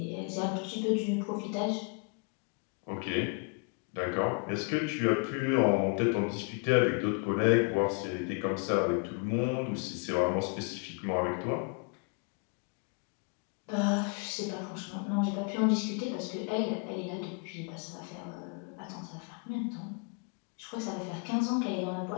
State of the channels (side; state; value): right; quieter; 36.8 dB